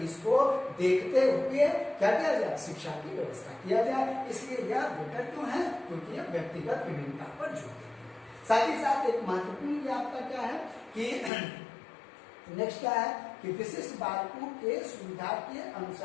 को देखते हुए क्या किया जाए शिक्षा की व्यवस्था किया जाए। इसलिए यह बेटर क्यों है, क्योंकि यह व्यक्तिगत विभिन्नता पर जोर देती है। साथ ही साथ एक महत्वपूर्ण आपका क्या है कि नेक्स्ट क्या है कि विशिष्ट बालकों के सुविधा के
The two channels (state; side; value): drops out; right; at 11.3 s